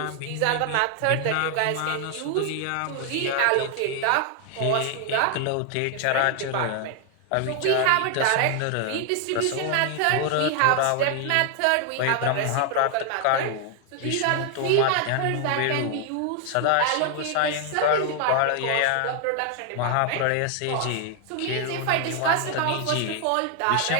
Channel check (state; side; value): different; both; correlation 0.00